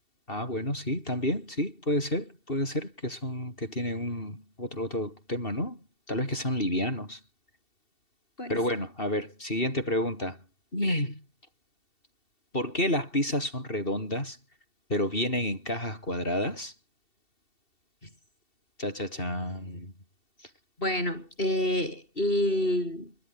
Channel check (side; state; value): right; late; 2.7 ms